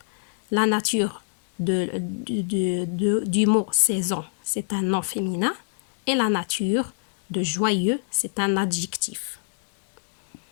La nature du mot saison, c'est un nom féminin. Et la nature de joyeux, c'est un adjectif.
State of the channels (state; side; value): silent; right; digital silence